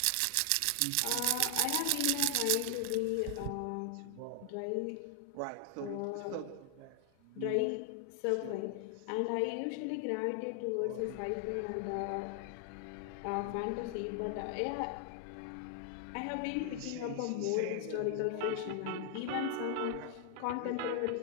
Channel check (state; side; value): different; both; correlation 0.00